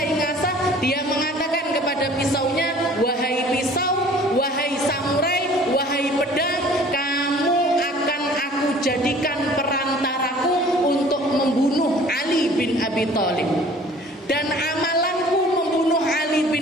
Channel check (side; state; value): both; normal; correlation 0.50